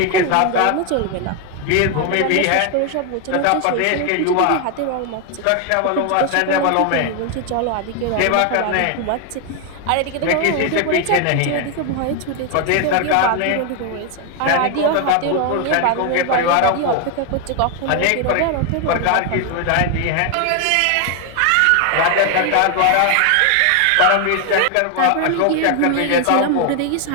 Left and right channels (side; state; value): both; different; correlation 0.01